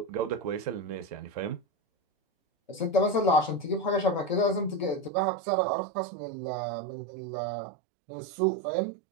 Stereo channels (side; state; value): left; drops out; at 5.1 s